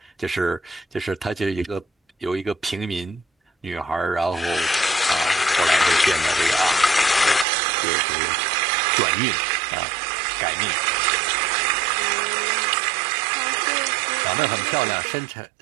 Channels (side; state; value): left; drops out; at 7.5 s